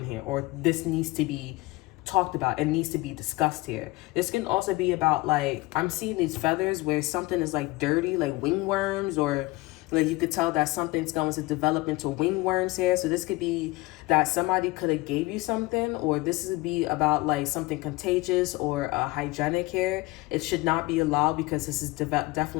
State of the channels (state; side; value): quieter; right; 21.2 dB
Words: here, or this needs to be talked about and needs to be discussed here. This can also be about, like, I'm seeing these feathers where something is like dirty, like wingworms, or like you could tell that something's going to develop into wingworms here. So this could be that somebody could have gave you something, or this would be about like something contagious or hygienic here. It should not be allowed, because this is